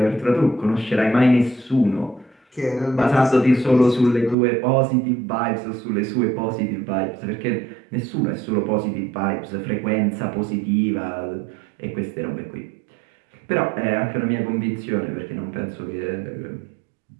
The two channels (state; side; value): drops out; left; at 4.4 s